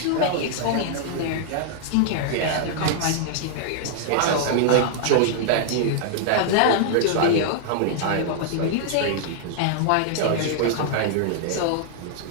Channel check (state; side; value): different; both; correlation -0.01